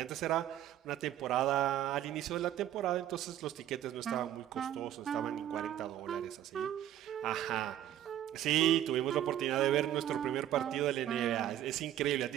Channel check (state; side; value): quieter; left; 11.8 dB